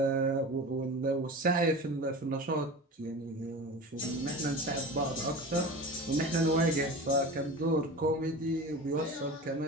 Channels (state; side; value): normal; both; correlation 0.32